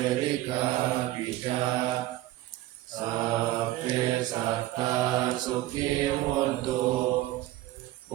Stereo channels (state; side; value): quieter; left; 15.8 dB